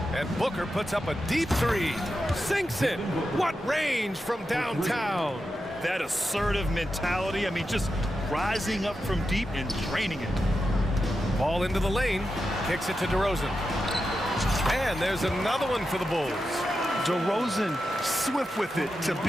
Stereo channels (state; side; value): normal; both; correlation 0.89